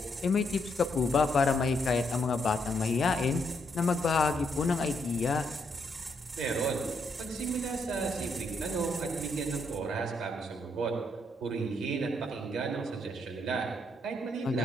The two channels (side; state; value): both; normal; correlation 0.76